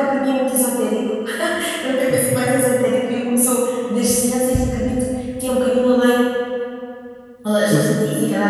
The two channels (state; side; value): identical; both; correlation 1.00